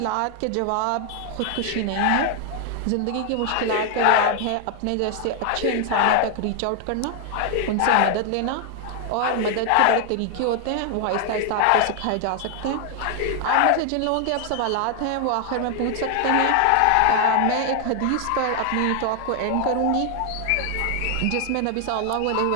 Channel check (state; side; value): different; both; correlation 0.00